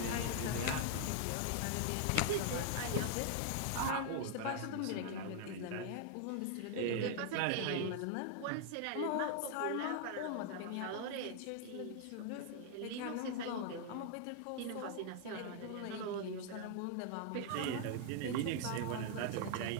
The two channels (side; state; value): both; different; correlation 0.00